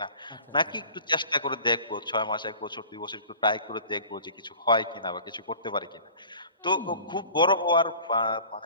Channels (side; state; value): both; inverted; correlation -0.44